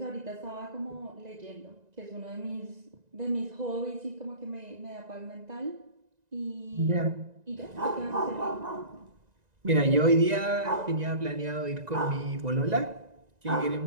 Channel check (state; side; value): late; left; 1.9 ms